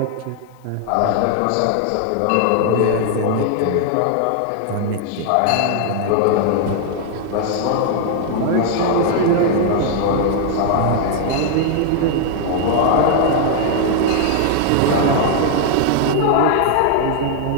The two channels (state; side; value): different; both; correlation 0.00